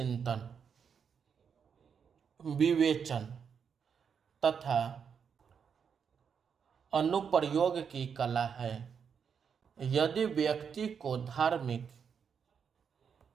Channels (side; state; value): left; quieter; 6.9 dB